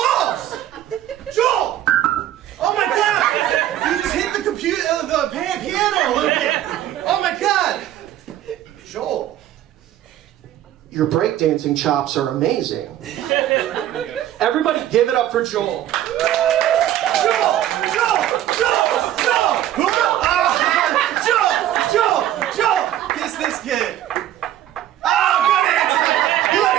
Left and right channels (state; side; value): quieter; left; 12.4 dB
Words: Joel! Oh my God! You just hit the computer, the piano a little bit. Oh my God! Joel, your breakdancing chops are amazing. Everybody, give it up for Joel. Joel! Kiss this kid. Oh, good